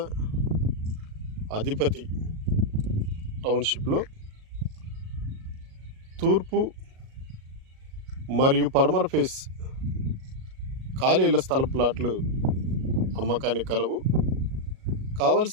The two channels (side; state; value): left; late; 37 ms